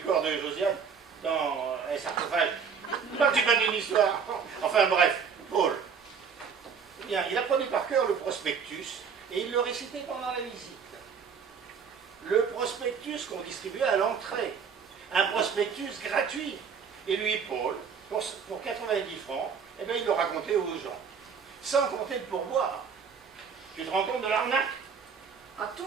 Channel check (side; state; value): left; quieter; 6.4 dB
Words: de Josiane dans un sarcophage. Non, c'est pas d'une histoire. Enfin bref, Paul. Eh bien, il apprenait par cœur le prospectus et il le récitait pendant la visite. Le prospectus qu'on distribuait à l'entrée. Un prospectus gratuit. Et lui, Paul, pour 90 francs, eh bien, il le racontait aux gens. Sans compter de pourboire. Tu te rends compte de l'arnaque? À